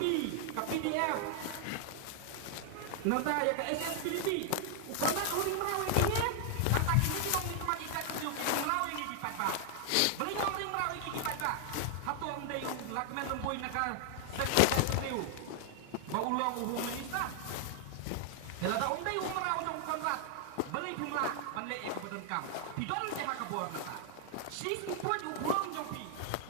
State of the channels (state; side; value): different; both; correlation 0.00